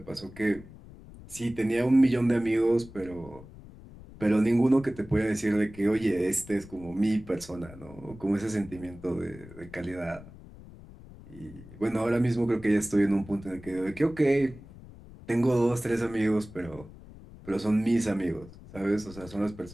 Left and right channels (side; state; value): left; noise; rumble, 18 dB below the sound